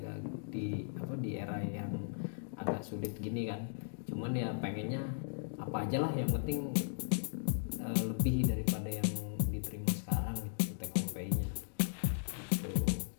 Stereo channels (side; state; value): right; silent; digital silence